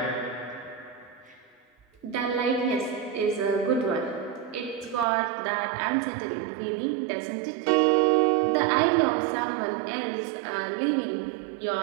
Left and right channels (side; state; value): left; drops out; at 5.1 s